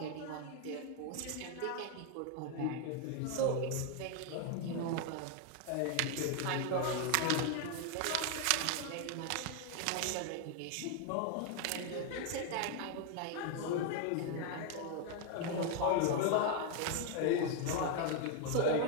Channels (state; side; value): different; both; correlation 0.01